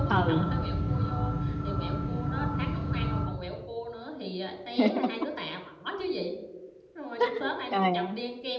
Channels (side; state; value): both; identical; correlation 1.00